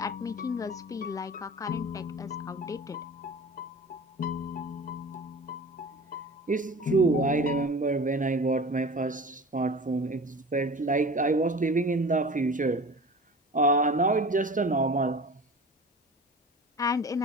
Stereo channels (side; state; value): both; normal; correlation 0.37